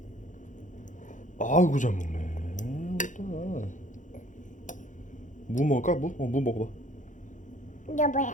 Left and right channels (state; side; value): late; right; 0.37 ms